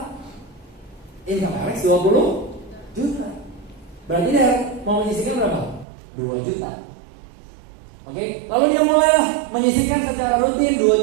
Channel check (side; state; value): left; drops out; at 5.9 s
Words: Income Alex 20 juta. Berarti dia mau menyisihkan berapa? 2 juta. Oke, lalu dia mulailah menyisihkan secara rutin